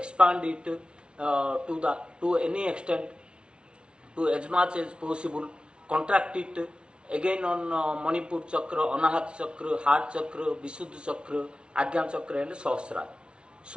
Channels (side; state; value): left; late; 0.057 ms